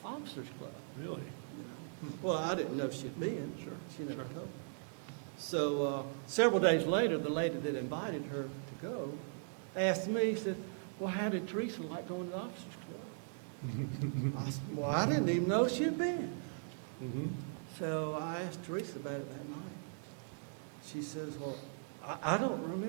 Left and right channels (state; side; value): silent; left; digital silence